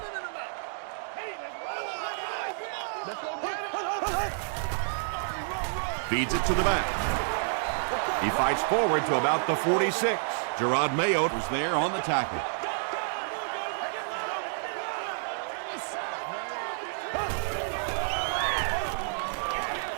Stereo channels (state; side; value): silent; left; digital silence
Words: Feeds it to the back. He fights forward to about the 46. Gerard Mayo was there on the tackle.